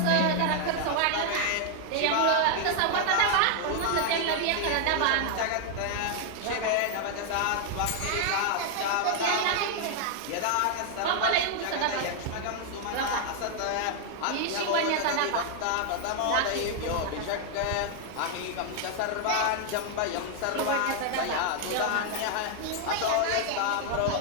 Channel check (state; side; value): different; both; correlation 0.00